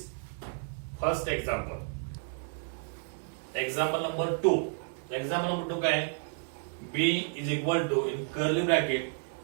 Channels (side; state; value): left; silent; 57 dB below the other